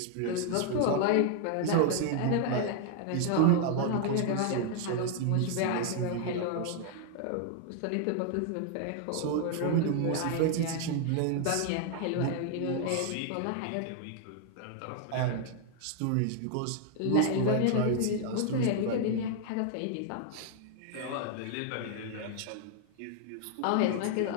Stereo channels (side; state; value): both; different; correlation 0.00